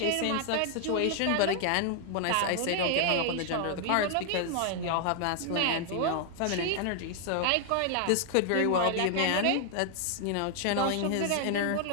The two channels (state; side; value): different; both; correlation 0.00